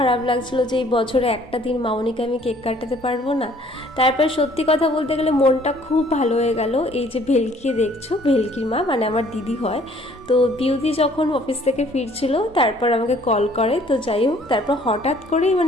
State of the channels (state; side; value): normal; both; correlation 0.58